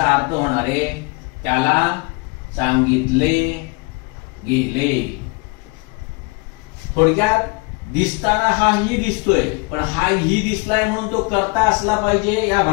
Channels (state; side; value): quieter; right; 29.3 dB